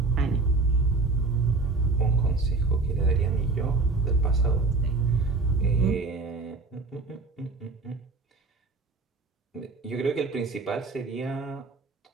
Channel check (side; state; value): left; quieter; 3.7 dB